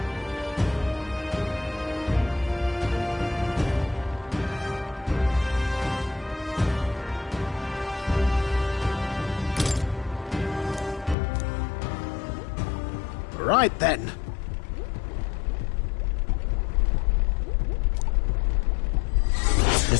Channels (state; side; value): drops out; right; at 11.2 s